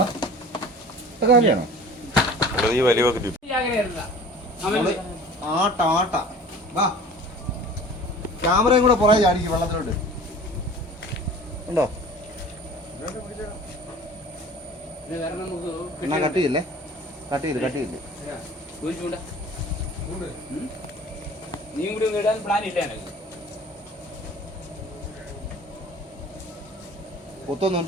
കാര്യമാണോ ആട്ട വാ ക്യാമറയും കൂടെ പുറകെ ചാടിക്കും വെള്ളത്തിലോട്ട് ഉണ്ടോ. എന്നാ കട്ടിയില്ലേ കട്ടിയില്ലേ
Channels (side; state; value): both; normal; correlation 0.44